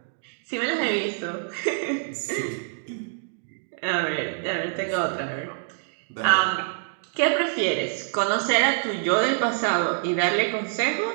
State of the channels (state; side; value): silent; left; digital silence